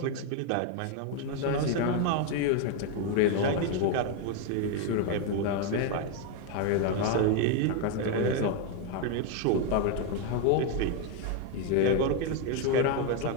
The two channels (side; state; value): both; different; correlation 0.01